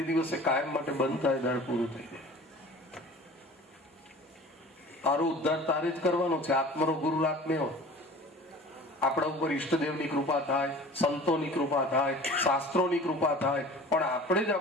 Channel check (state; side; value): normal; both; correlation 0.42